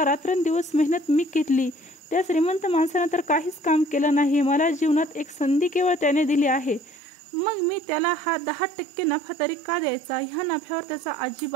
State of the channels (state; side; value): drops out; left; at 7.0 s